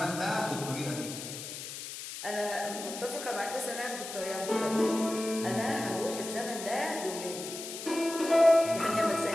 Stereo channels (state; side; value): noise; left; hiss, 9 dB below the sound